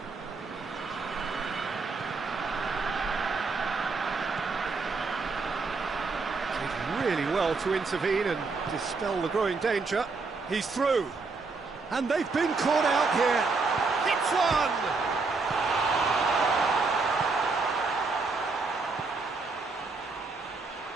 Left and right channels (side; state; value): left; quieter; 4.1 dB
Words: Did really well to intervene and dispel the growing danger. He's through. And they've been caught out here. It's one!